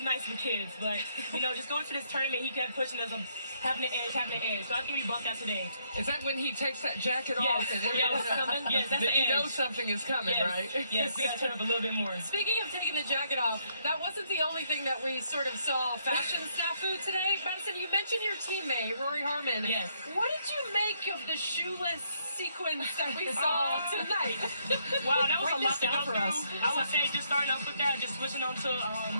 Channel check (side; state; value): both; inverted; correlation -0.71